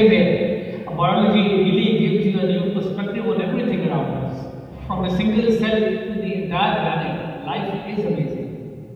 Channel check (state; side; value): identical; both; correlation 1.00